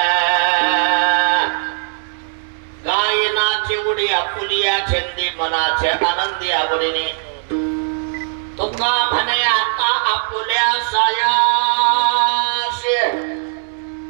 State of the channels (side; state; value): left; silent; 63 dB below the other